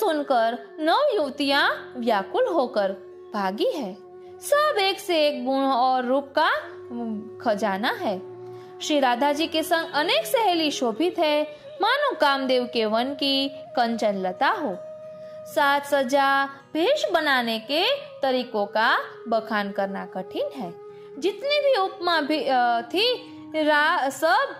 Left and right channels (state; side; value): identical; both; correlation 1.00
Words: 9 युवतियां व्याकुल होकर भागी है. सब एक से एक गुण और रूप का खजाना है. श्री राधा जी के संग अनेक सहेली शोभित है, मानो कामदेव के वन की कंचन लता हो। साज सजा भेष बनाने के तरीकों का बखान करना कठिन है। जितनी भी उपमा भी थी सब